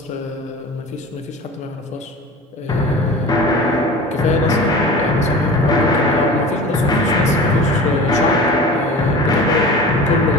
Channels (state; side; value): normal; both; correlation 0.36